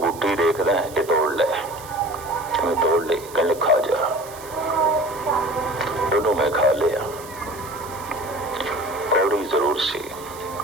देखदा है, ये तोड़ ले। मैं तोड़ ली, कहने खा जा। दोनों मैं खा लिया। कौड़ी जरूर सी।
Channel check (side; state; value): right; noise; hiss, 18 dB below the sound